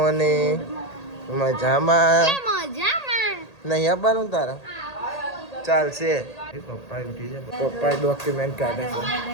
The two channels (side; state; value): right; late; 1.8 ms